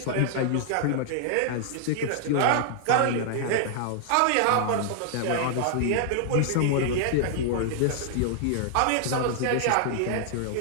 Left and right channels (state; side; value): different; both; correlation -0.01